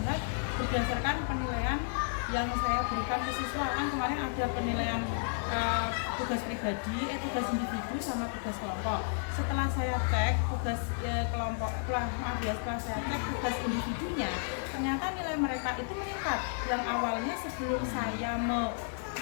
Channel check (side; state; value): right; silent; digital silence